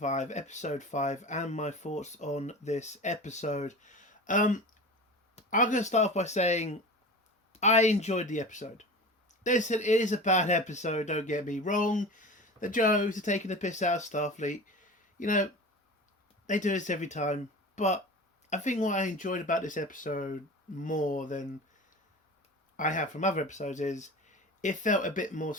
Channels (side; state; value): both; normal; correlation 0.34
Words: Episode 5, and my thoughts on this episode. I'm going to start off by saying I enjoyed the episode. Listen, it is a bad episode, don't get me wrong. The jokes are taking the piss out of Starfleet. You know, they do this every time. But I think what I enjoyed about this episode more than I have from other episodes is it felt a bit more